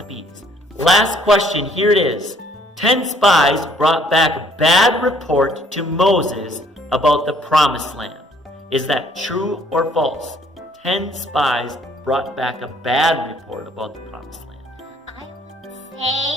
of bees. Last question, here it is. 10 spies brought back bad report to Moses about the promised land. Is that true or false? 10 spies brought back a bad report about the promised land? I would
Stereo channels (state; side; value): normal; both; correlation 0.61